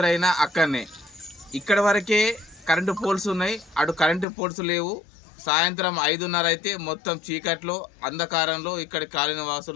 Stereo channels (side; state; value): right; drops out; at 4.2 s